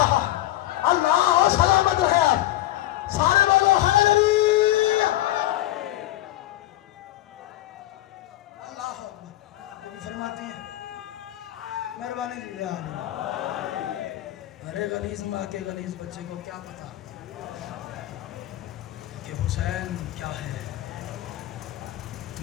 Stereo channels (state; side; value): quieter; right; 15.3 dB